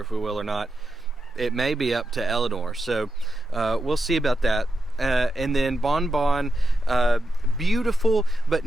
if we will or not. It may be up to Eleanor, so we'll see about that. And then Bon Bon, beautiful, but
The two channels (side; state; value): both; normal; correlation 0.88